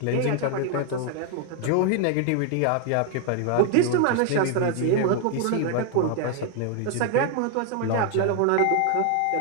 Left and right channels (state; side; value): different; both; correlation 0.00